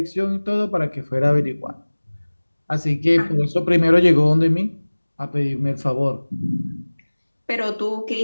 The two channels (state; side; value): inverted; both; correlation -1.00